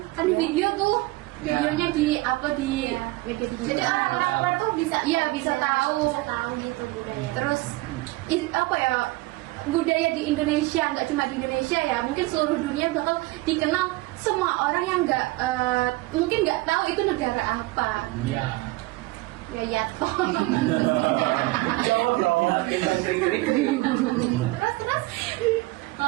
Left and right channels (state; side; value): quieter; left; 20.7 dB